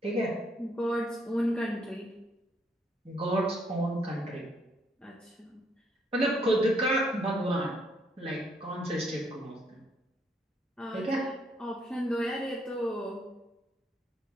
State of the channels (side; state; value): both; normal; correlation 0.71